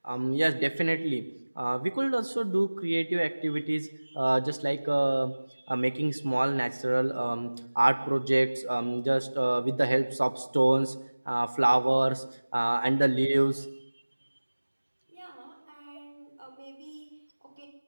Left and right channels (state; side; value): inverted; both; correlation -1.00